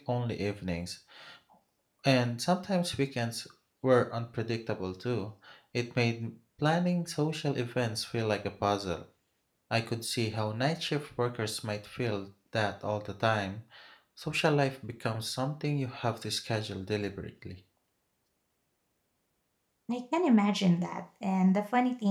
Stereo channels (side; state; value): both; identical; correlation 1.00